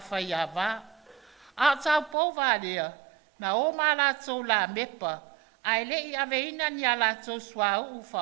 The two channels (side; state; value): left; drops out; at 2.1 s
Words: whai a wā. A tau pou wālea, na o maa la tau la mepa. Ai le i aveina ni a la tau sua au u